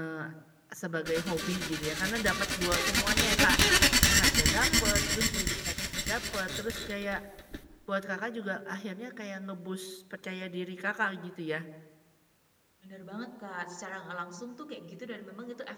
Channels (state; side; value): identical; both; correlation 1.00